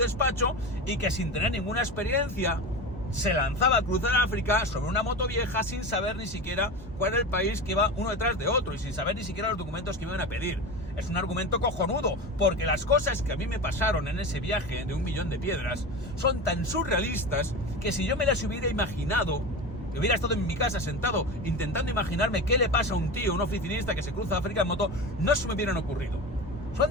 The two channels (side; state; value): both; normal; correlation 0.26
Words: y que sin tener ninguna experiencia se lanzaba a cruzar África sobre una moto vieja sin saber ni siquiera cuál era el país que iba uno detrás de otro y sin saber ni siquiera los documentos que me iban a pedir. Es un argumento cojonudo, porque las cosas que a mí me pasaron en ese viaje de 1 millón de piedras son tan surrealistas que si yo me las hubiera imaginado, hubiera estado en mi casa sentado intentando imaginarme qué le pasa a un tío, un oficinista que se cruza África en moto, no se me hubieran ocurrido.